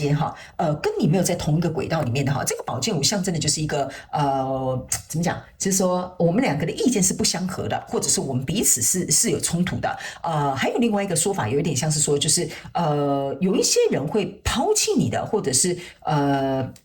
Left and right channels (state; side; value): identical; both; correlation 1.00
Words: 跟你没有在同一个轨道里面的哈，这个宝剑五象征的就是一个怎么讲？就是说我们两个的意见是不相合的，或者是我们彼此是有冲突的。还有另外一个说法，有一点像是说，就是有一些人会抛弃你的，或者是